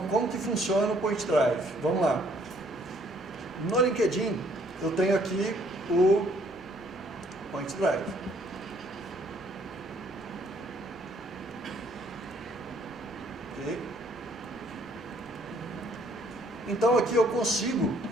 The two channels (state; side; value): normal; both; correlation 0.63